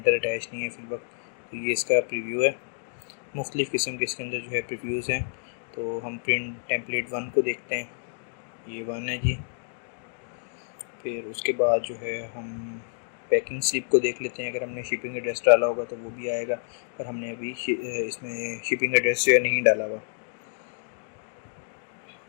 अटैच नहीं है फिल वक्त। तो ये इसका प्रीव्यू है। मुख्तलिफ़ किस्म के इसके अंदर जो है प्रीव्यूज़ हैं। तो हम प्रिंट टेम्पलेट 1 को देखते हैं। ये 1 है जी। फिर उसके बाद जो है हम पैकिंग स्लिप को देख लेते हैं। अगर हमने शिपिंग एड्रेस डाला होगा तो वो भी आएगा, पर हमने अभी इसमें शिपिंग एड्रेस जो है नहीं डाला हुआ।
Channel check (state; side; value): silent; right; digital silence